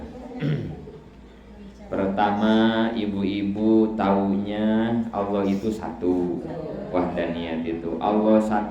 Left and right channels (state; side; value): identical; both; correlation 1.00